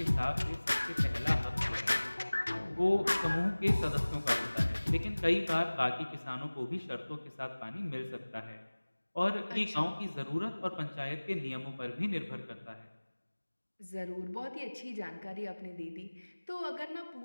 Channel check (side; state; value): both; inverted; correlation -1.00